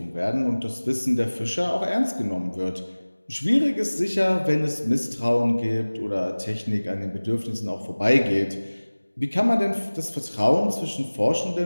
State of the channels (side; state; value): both; inverted; correlation -1.00